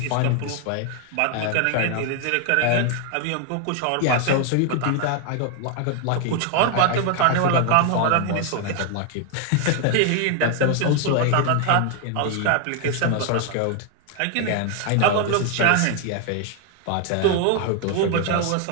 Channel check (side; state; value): both; different; correlation 0.00